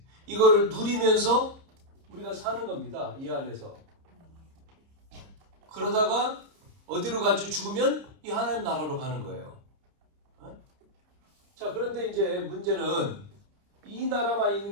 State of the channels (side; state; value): left; late; 30 ms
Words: 이거를 누리면서 우리가 사는 겁니다. 이 안에서. 그러다가 어디로 가지? 죽으면 이 하나님 나라로 가는 거예요. 자, 그런데 이제 문제는 이 나라만 있는